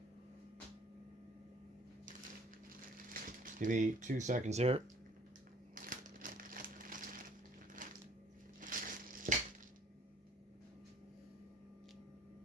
Give me 2 seconds here.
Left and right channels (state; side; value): normal; both; correlation 0.54